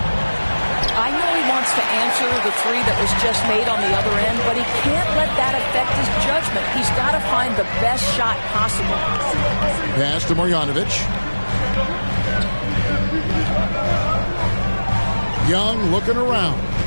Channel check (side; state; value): both; inverted; correlation -1.00